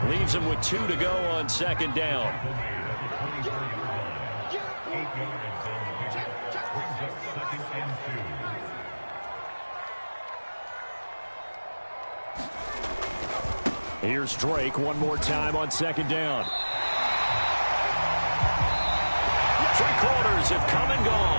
Leaves them with 2 to go on 2nd down. Here's Drake one more time on 2nd down. 3 quarters have come and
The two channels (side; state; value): both; inverted; correlation -1.00